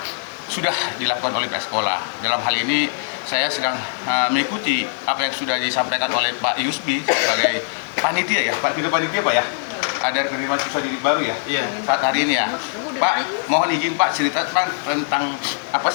sudah dilakukan oleh pihak sekolah. Dalam hal ini saya sedang mengikuti apa yang sudah disampaikan oleh Pak Yusbi sebagai panitia ya, Pak. Tidak panitia Pak ya? Ada penerimaan siswa didik baru ya? Iya. Saat hari ini ya. Pak, mohon izin Pak cerita tentang apa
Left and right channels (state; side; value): silent; right; digital silence